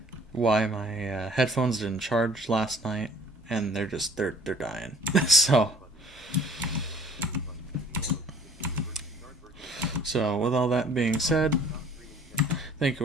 headphones didn't charge last night, and they're dying. So with all that being said, thank Thank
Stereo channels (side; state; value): both; normal; correlation 0.53